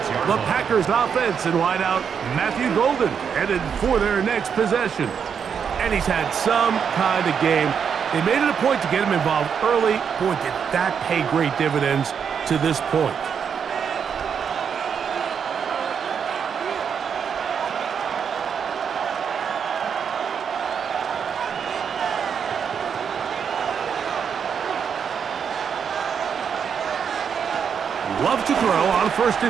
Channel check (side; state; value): left; quieter; 7.1 dB